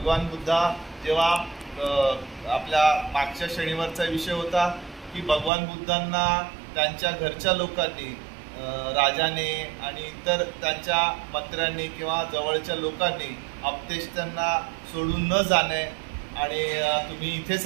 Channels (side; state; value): left; drops out; at 5.5 s